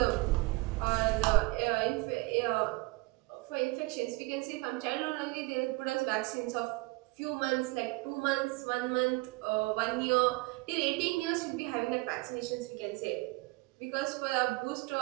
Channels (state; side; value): quieter; left; 24.5 dB